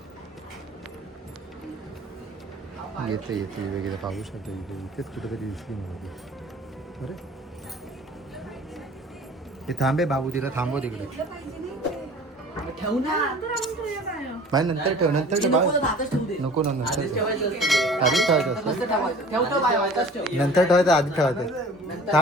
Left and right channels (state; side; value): normal; both; correlation 0.46